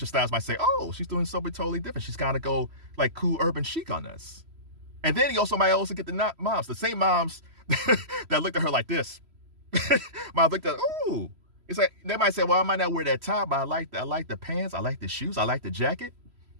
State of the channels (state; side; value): late; left; 3.0 ms